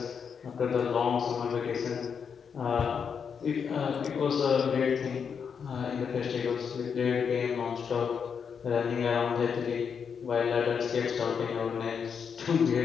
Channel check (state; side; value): quieter; right; 6.6 dB